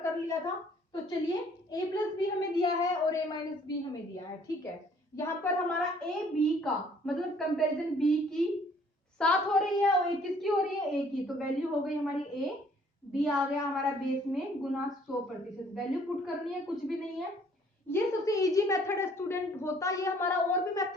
लिया था। तो चलिए a प्लस बी हमें दिया है और a माइनस बी हमें दिया है। ठीक है, यहाँ पर हमारा a b का मतलब कंपैरिजन b की 7 हो रही है और किसकी हो रही है, a की। तो वैल्यू हो गई हमारी a, b आ गया हमारा बेस में गुना 100%। वैल्यू पुट करनी है, कुछ भी नहीं है। ये सबसे इजी मेथड है स्टूडेंट। होता ये हमारा और भी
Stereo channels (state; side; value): normal; both; correlation 0.59